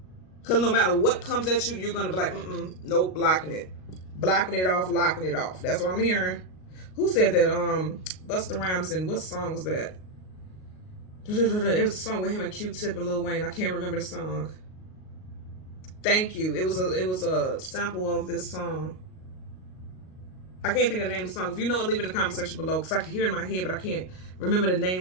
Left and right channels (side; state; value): right; late; 38 ms